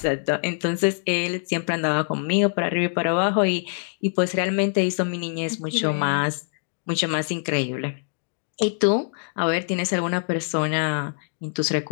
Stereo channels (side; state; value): right; silent; digital silence